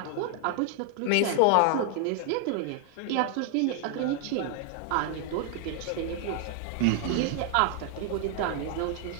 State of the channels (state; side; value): different; both; correlation 0.00